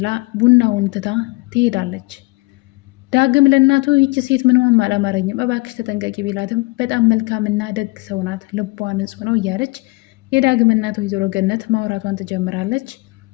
ቡናውን ትታ ትሄዳለች። ዳግም ለእናቱ ይቺ ሴት ምንም አላማረኝም እባክሽ ተጠንቀቂ ቢላትም በጣም መልካምና ደግ ሰው ናት፣ ልቧ ንጹሕ ነው እያለች የዳግም እናቱ ወይዘሮ ገነት ማውራቷን ትጀምራለች።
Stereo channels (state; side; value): quieter; right; 24.6 dB